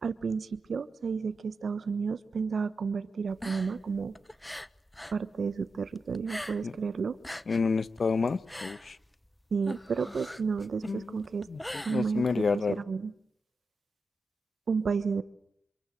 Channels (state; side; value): normal; both; correlation 0.87